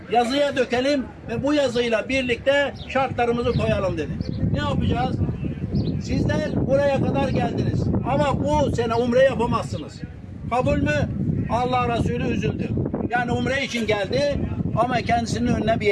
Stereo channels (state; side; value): identical; both; correlation 1.00